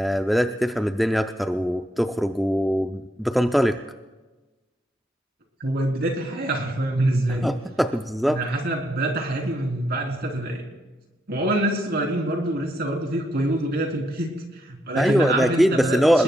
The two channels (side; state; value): both; normal; correlation 0.79